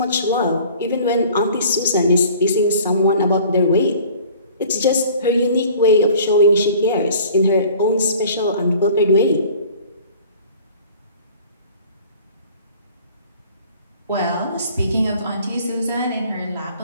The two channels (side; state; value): both; inverted; correlation -0.49